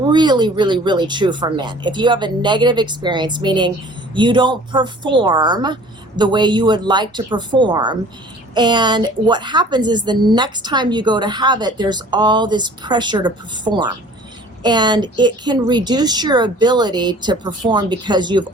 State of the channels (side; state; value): both; normal; correlation 0.49